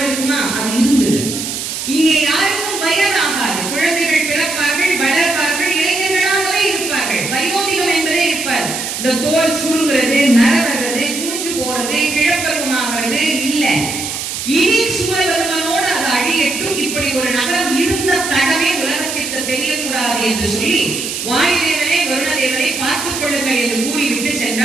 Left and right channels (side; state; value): right; noise; hiss, 5 dB below the sound